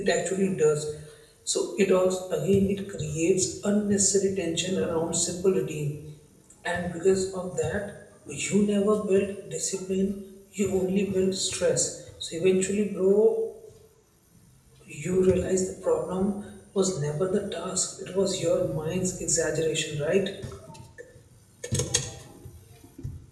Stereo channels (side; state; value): both; identical; correlation 1.00